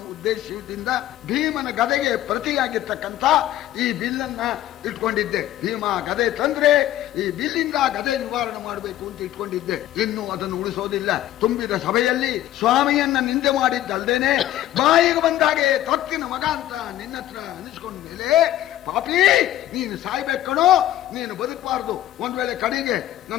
ಉದ್ದೇಶದಿಂದ ಭೀಮನ ಗದೆಗೆ ಪ್ರತಿಯಾಗಿರ್ತಕ್ಕಂಥ ಈ ಬಿಲ್ಲನ್ನ ಇಟ್ಕೊಂಡಿದ್ದೆ. ಭೀಮ ಗದೆ ತಂದ್ರೆ ಈ ಬಿಲ್ಲಿಂದ ಗದೆ ನಿವಾರಣೆ ಮಾಡಬೇಕು ಅಂತ ಇಟ್ಕೊಂಡಿದ್ದೆ. ಇನ್ನು ಅದನ್ನು ಉಳಿಸೋದಿಲ್ಲ. ತುಂಬಿದ ಸಭೆಯಲ್ಲಿ ಸ್ವಾಮಿಯನ್ನ ನಿಂದೆ ಮಾಡಿದ್ದಲ್ದೇನೆ ಬಾಯಿಗೆ ಬಂದಾಗೆ ತೊತ್ತಿನ ಮಗ ಅಂತ ನಿನ್ನ ಹತ್ರ ಅನಿಸ್ಕೊಂಡ ಮೇಲೆ, ಪಾಪಿ ನೀನು ಸಾಯ್ಬೇಕಣೋ, ನೀನು ಬದುಕಬಾರ್ದು. ಒಂದ್ ವೇಳೆ ಕಡೆಗೆ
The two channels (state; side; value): quieter; right; 13.4 dB